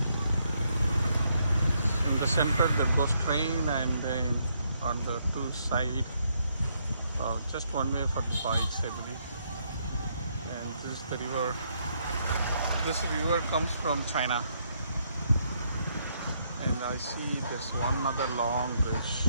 In the center there goes train, and then on the two sides, just one way for the bikes, I believe. And this is the river. This river comes from China. And I see there's one other long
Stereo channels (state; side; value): inverted; both; correlation -0.74